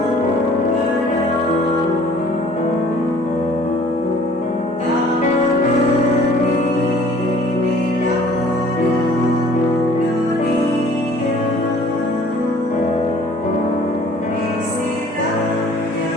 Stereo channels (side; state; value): both; normal; correlation 0.53